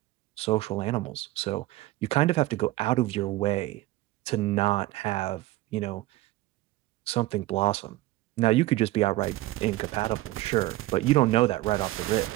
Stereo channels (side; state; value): left; quieter; 17.6 dB